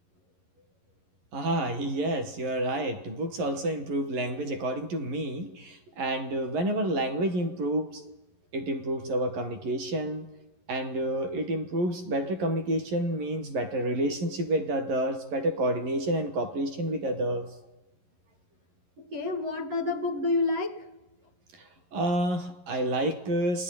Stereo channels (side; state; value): left; late; 11 ms